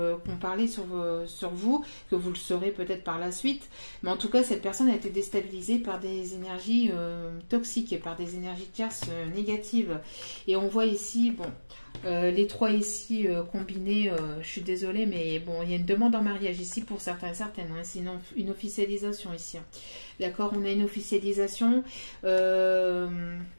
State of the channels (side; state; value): both; inverted; correlation -1.00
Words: qu'on parlait sur vous, que vous le saurez peut-être par la suite. Mais en tout cas, cette personne a été déstabilisée par des énergies toxiques, par des énergies tierces négatives. Et on voit ici, bon, les trois ici combinés, je suis désolée, mais bon, il y a une demande en mariage ici pour certains et certaines. Hein, c'est une officialisation ici. Hein. D'accord, on a une officialisation.